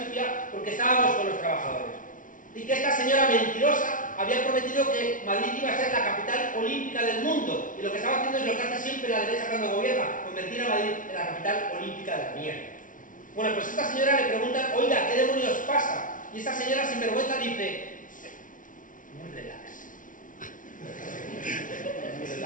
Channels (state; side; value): late; right; 0.38 ms